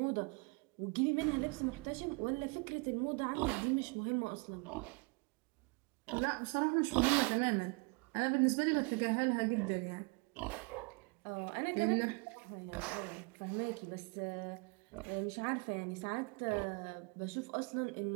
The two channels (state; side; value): quieter; left; 30.7 dB